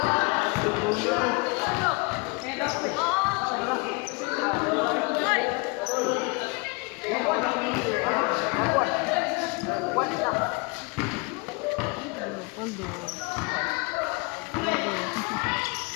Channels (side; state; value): right; quieter; 29.3 dB